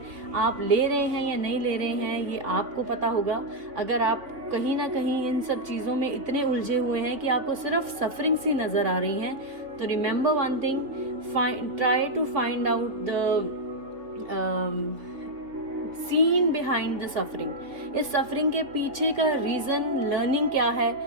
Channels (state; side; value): late; left; 3.5 ms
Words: आप ले रहे हैं या नहीं ले रहे हैं ये आपको पता होगा। अगर आप कहीं ना कहीं इन सब चीज़ों में इतने उलझे हुए हैं कि आपको सिर्फ सफरिंग सी नज़र आ रही हैं, तो remember one thing, try to find out the scene behind the suffering. इस सफरिंग के पीछे का रीज़न, लर्निंग क्या है,